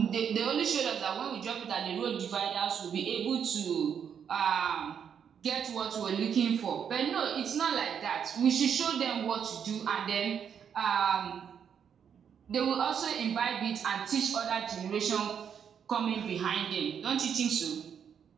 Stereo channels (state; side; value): quieter; left; 7.8 dB